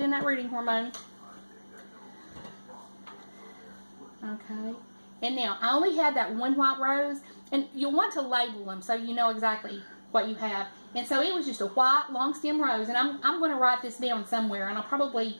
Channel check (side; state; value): both; inverted; correlation -1.00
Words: that rooting hormone. Okay. And now, I only had that one white rose. And you'll want to label them so you know exactly what you have. And so it was just a white long stem rose. And I'm going to write this down somewhere. And I'll probably